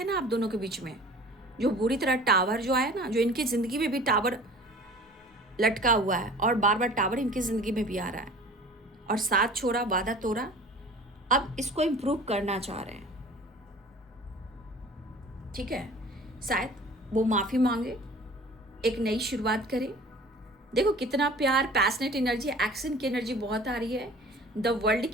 ना आप दोनों के बीच में, जो बुरी तरह टावर जो आया ना, जो इनकी ज़िंदगी में भी टावर लटका हुआ है, और बार बार टावर इनकी ज़िंदगी में भी आ रहा है, और साथ छोड़ा, वादा तोड़ा, अब इसको इम्प्रूव करना चाह रहे हैं। ठीक है, शायद वो माफ़ी मांगे, एक नई शुरुआत करें। देखो कितना प्यार, पैशनेट एनर्जी, एक्शन की एनर्जी बहुत आ रही है, द वर्ल्ड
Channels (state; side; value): normal; both; correlation 0.45